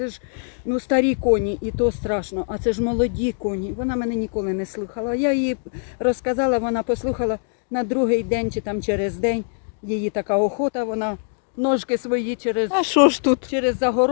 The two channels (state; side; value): silent; right; digital silence